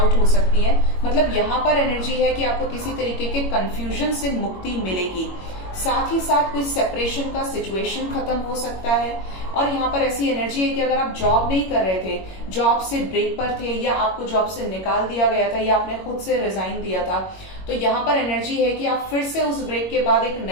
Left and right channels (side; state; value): right; late; 21 ms